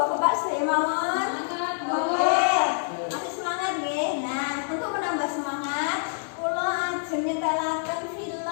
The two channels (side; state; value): right; silent; 60 dB below the other